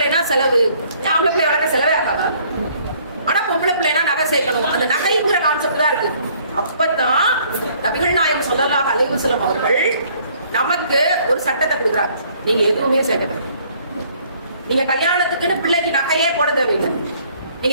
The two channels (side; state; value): both; inverted; correlation -0.61